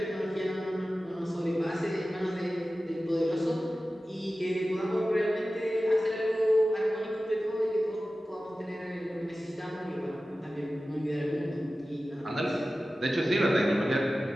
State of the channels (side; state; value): both; normal; correlation 0.95